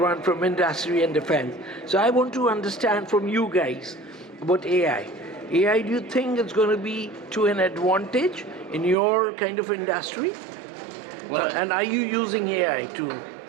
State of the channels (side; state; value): left; drops out; at 9.0 s